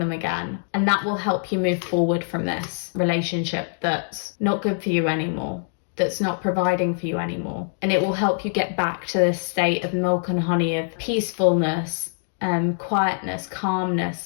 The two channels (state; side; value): silent; right; digital silence